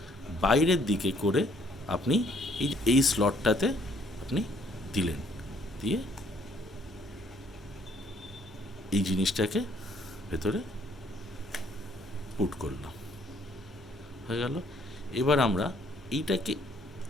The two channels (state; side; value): normal; both; correlation 0.64